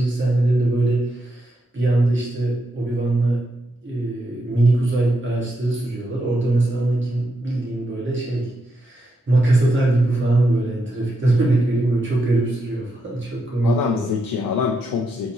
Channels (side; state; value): both; normal; correlation 0.82